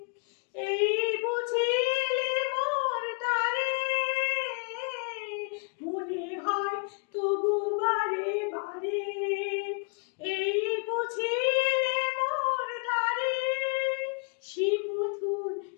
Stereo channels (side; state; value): right; quieter; 35.7 dB